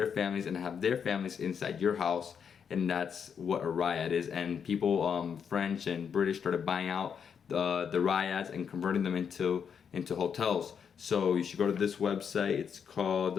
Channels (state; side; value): quieter; right; 7.1 dB